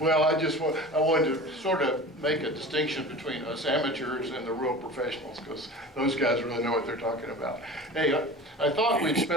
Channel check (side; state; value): both; normal; correlation 0.36